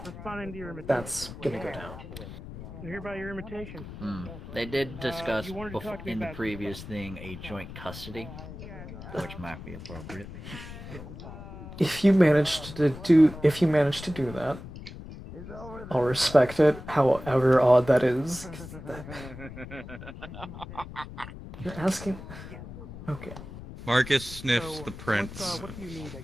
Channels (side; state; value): left; noise; rumble, 12 dB below the sound